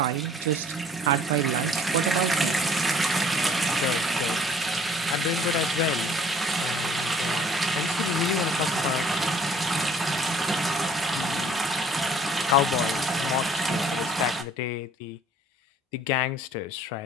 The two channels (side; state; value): both; normal; correlation 0.55